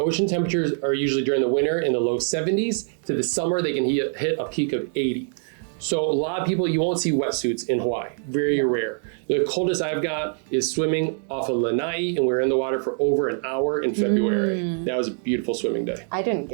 temperatures are usually during the winter in the low 70s. To the summer, they can hit a peak of 80. So a lot of people, you won't see wetsuits in Hawaii, very rare. The coldest I've got is swimming off of Lanai, and we were in the water for over an hour in February. That was a beautiful swimming day. I didn't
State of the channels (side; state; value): left; silent; 55 dB below the other